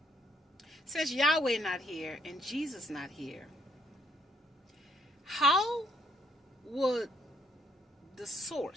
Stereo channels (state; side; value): normal; both; correlation 0.69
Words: since Yahweh not here and Jesus not here, how would the